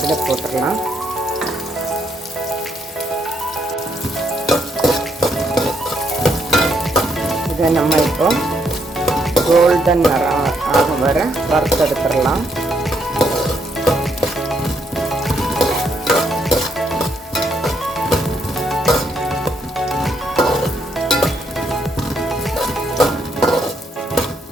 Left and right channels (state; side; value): normal; both; correlation 0.74